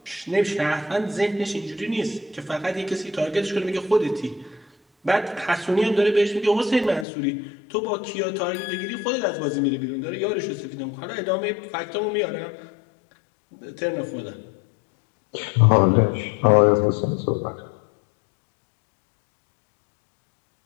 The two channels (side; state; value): right; drops out; at 7.1 s